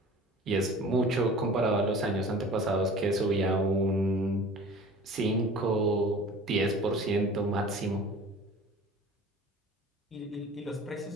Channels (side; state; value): both; normal; correlation 0.43